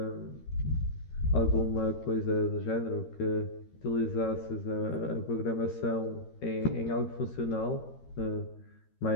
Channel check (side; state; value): right; late; 13 ms